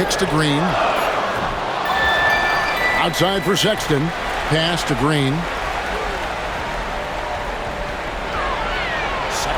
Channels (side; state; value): both; identical; correlation 1.00